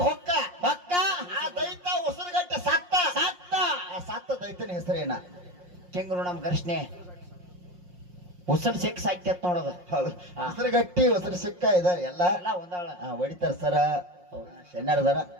ಹೊಕ್ಕ ಹೊಕ್ಕ ಆ ದೈತ್ಯ ಉಸಿರುಗಟ್ಟಿ ಸತ್ತ ಸತ್ತ ಆ ಸತ್ತ ದೈತ್ಯನ ಹೆಸರೇನ ಕೆಂಗರು ನಮ್ ಘರ್ಷಣೆ ಉಸಲ್ ಸಿಕ್ ಸಾಕ್ಯತ್ ನೋಡೋದು ಹೌದು ಹಾ. ಉಸಿರುಗಟ್ಟಿ ಉಸಿರು ಸಿಕ್ಕ ಇದಾರೆ ಎಲ್ಲ ಎಲ್ಲ ಒಂದಾಳ ಹೊಡಿತಾರ ಸರ ಶೆನ್ನಾರ್ದಾರ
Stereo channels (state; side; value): late; left; 5.6 ms